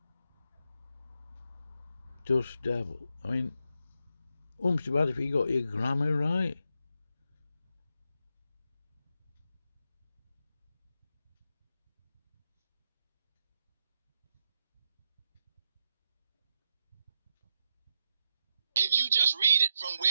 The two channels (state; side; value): inverted; both; correlation -0.83